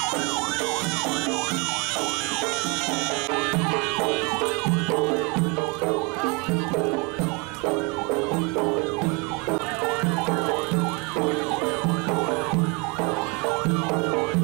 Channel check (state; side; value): quieter; left; 30.1 dB